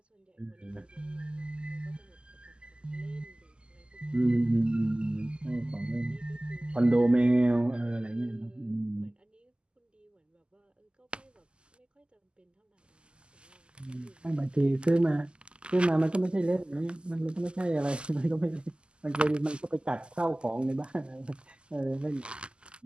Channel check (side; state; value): left; late; 0.050 ms